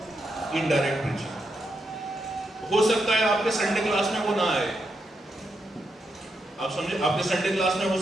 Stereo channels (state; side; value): normal; both; correlation 0.83